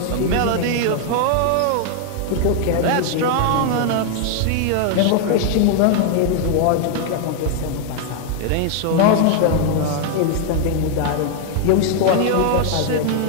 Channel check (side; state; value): both; different; correlation 0.00